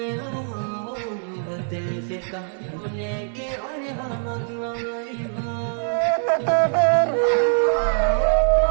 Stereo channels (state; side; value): silent; left; digital silence